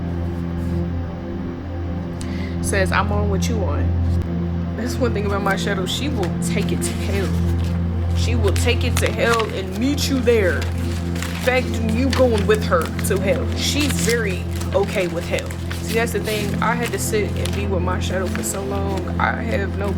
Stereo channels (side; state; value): both; identical; correlation 1.00